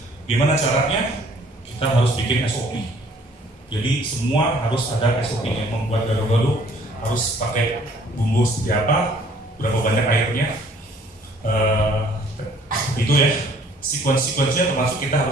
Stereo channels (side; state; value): both; normal; correlation 0.58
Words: Gimana caranya? Kita harus bikin SOP. Jadi semua harus ada SOP-nya. Membuat gado-gado harus pakai bumbu seperti apa, berapa banyak airnya, itu ya. Sekuensinya termasuk kita